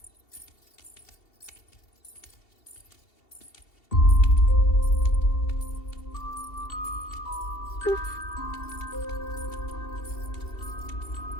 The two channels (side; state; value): right; late; 2.7 ms